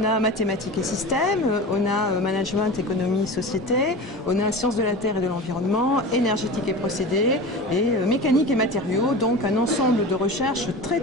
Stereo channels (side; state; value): both; normal; correlation 0.31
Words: a mathématiques et systèmes, on a management, économie, société, on a sciences de la terre et de l'environnement, énergétique et procédés et mécanique et matériaux. Donc un ensemble de recherches